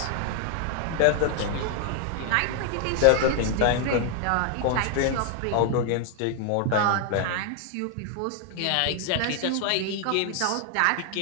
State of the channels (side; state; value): both; different; correlation 0.00